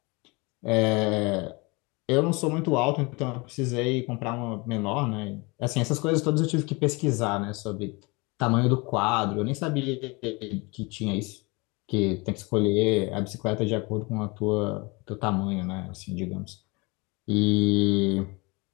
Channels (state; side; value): quieter; right; 26.9 dB